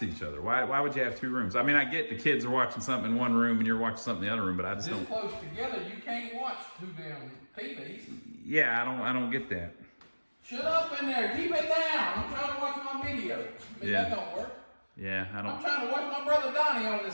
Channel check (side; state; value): both; inverted; correlation -1.00